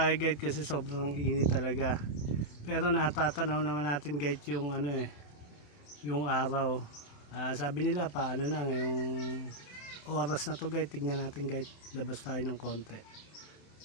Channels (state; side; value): late; right; 27 ms